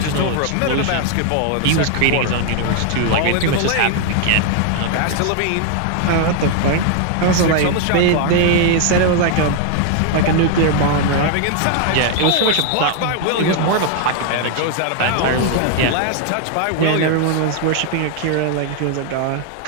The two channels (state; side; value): different; both; correlation 0.00